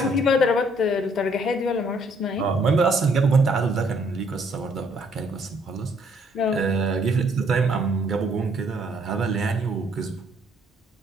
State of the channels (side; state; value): both; normal; correlation 0.66